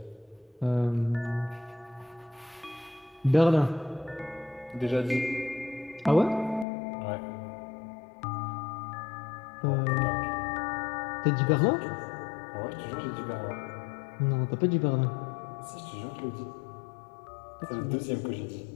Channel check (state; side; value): drops out; right; at 6.7 s